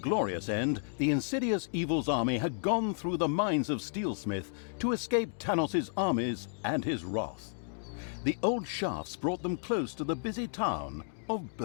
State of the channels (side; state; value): right; silent; digital silence